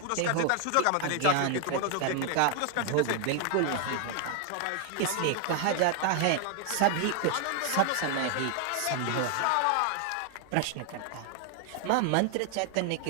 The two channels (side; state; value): both; different; correlation 0.00